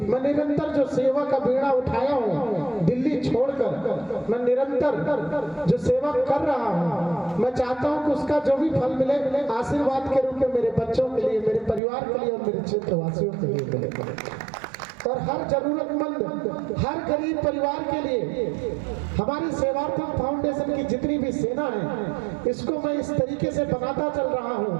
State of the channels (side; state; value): left; drops out; at 11.8 s